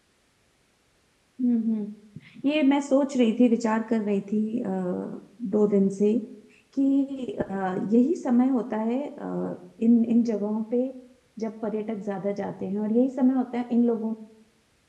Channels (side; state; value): both; identical; correlation 1.00